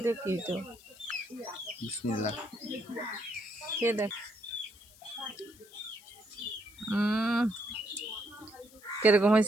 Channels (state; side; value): noise; left; hiss, 23 dB below the sound